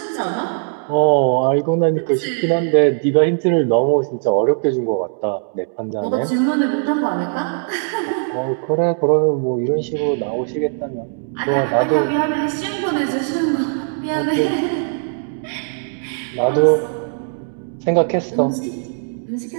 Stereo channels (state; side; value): silent; left; digital silence